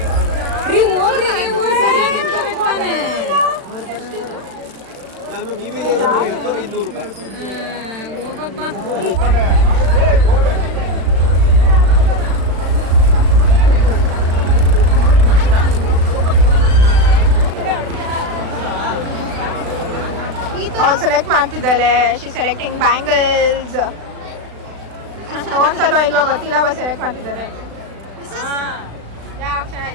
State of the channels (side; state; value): left; late; 36 ms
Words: ಅವ್ಳು ಸೆಲೆಕ್ಟ್ ಮಾಡ್ತಿದ್ದಾಳೆ. She selecting bangles. ತಗೊಂಡ್ಸಲೋ ಇಲ್ವಾ ಗೊತ್ತಿಲ್ಲ, ಬಟ್ ಸೆಲೆಕ್ಟ್ ಮಾಡ್ತಿದ್ದಾಳೆ.